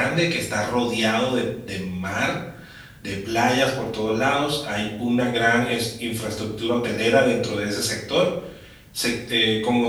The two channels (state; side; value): identical; both; correlation 1.00